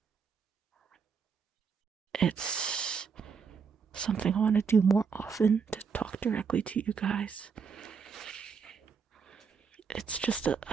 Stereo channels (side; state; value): left; quieter; 6.0 dB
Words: It's something I want to do more often, to talk directly to you guys. It's just a